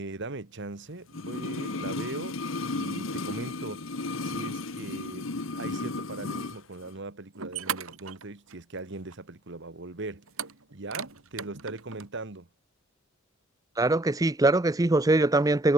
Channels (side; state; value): both; normal; correlation 0.56